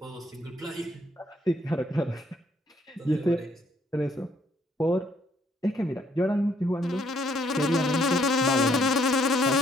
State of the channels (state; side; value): normal; both; correlation 0.68